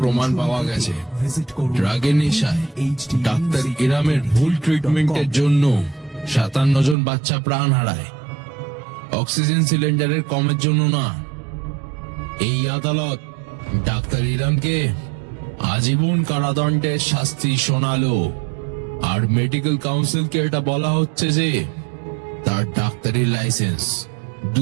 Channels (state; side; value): drops out; left; at 7.0 s